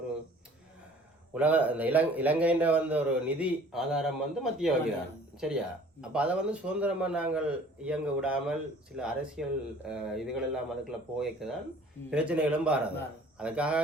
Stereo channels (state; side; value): normal; both; correlation 0.51